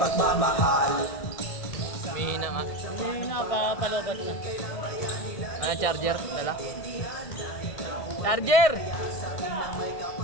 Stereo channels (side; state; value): right; late; 1.6 ms